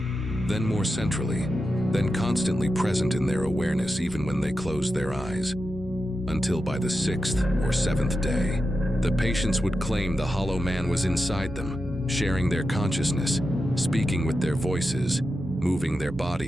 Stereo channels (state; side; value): normal; both; correlation 0.90